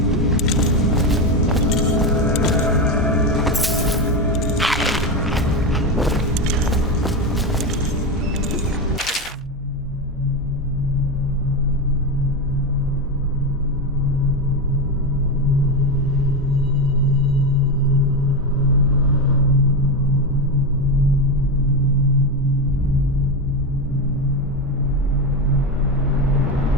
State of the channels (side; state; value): both; normal; correlation 0.14